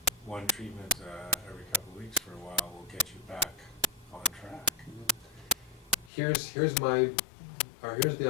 one treatment every couple of weeks for a while will get you back on track. Here's the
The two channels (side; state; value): right; drops out; at 6.1 s